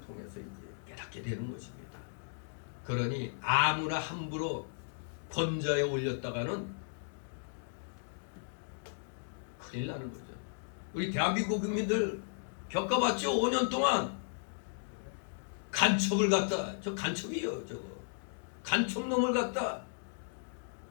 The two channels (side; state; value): right; silent; digital silence